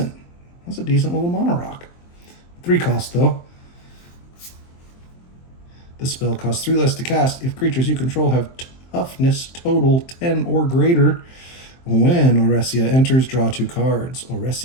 That's a decent little mana rock. 3 cost, though. The spell costs 3 less to cast if creatures you control have toughness total 10 or greater. When Oresia enters, draw 2 cards.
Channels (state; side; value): late; right; 23 ms